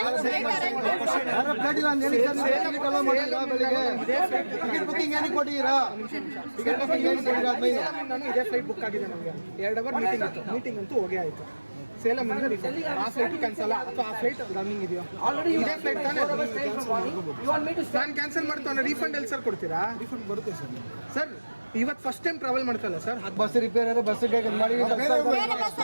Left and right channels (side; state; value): both; inverted; correlation -1.00